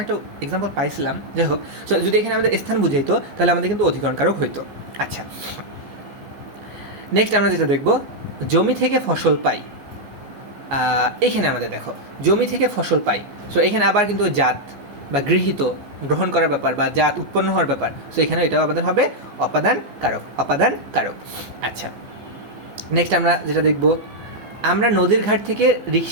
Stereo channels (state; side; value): late; left; 14 ms